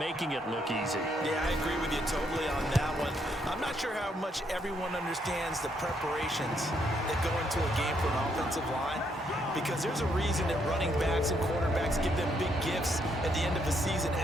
it look easy. Yeah, I agree with you totally on that one. I'm not sure how much everyone understands the preparations that go into a game for an offensive line, because there's a reason that running backs and quarterbacks give them big gifts at the end of the season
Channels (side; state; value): both; normal; correlation 0.74